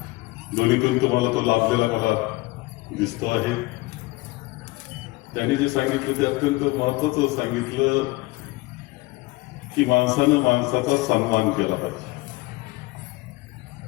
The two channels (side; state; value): right; quieter; 21.9 dB